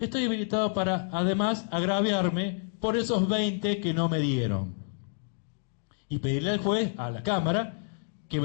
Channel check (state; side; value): silent; right; digital silence